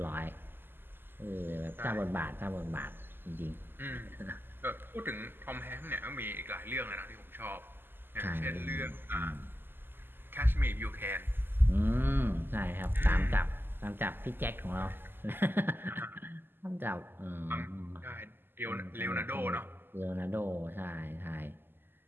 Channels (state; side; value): late; left; 0.097 ms